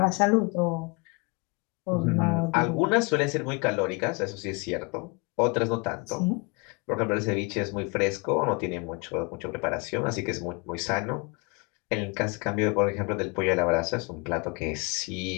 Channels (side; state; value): right; quieter; 29.4 dB